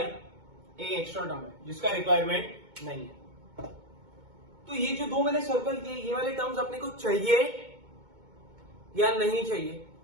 एक एक्स्ट्रा टर्म है जिसका रिक्वायरमेंट नहीं है। तो ये जो दो मैंने सर्कल किए, ये वाले टर्म्स अपने को चाहिए या नहीं चाहिए?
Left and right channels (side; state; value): left; late; 2.2 ms